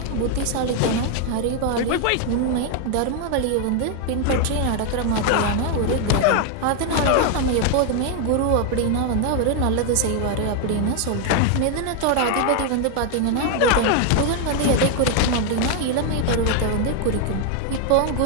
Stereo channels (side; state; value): both; different; correlation 0.01